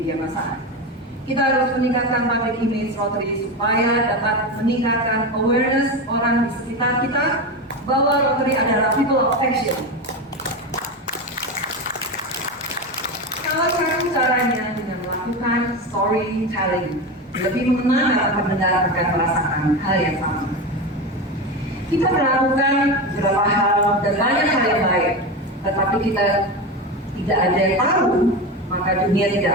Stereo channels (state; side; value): normal; both; correlation 0.20